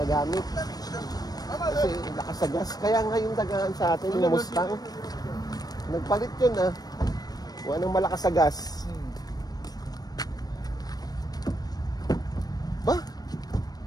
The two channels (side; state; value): right; late; 0.19 ms